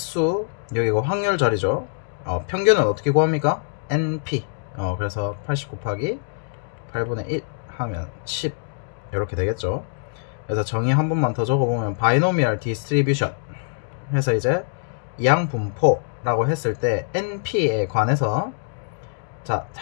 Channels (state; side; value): silent; right; digital silence